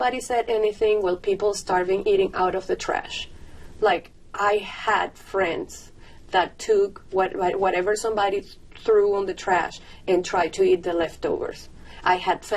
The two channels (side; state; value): both; identical; correlation 1.00